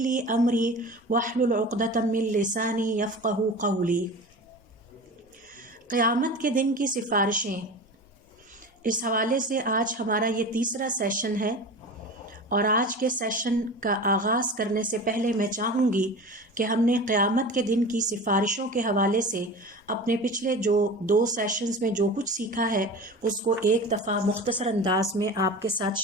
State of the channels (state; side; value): normal; both; correlation 0.33